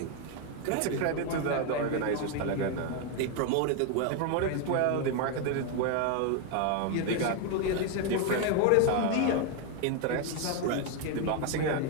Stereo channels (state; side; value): different; both; correlation 0.01